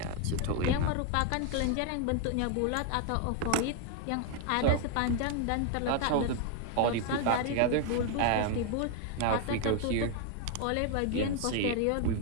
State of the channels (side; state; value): both; different; correlation 0.00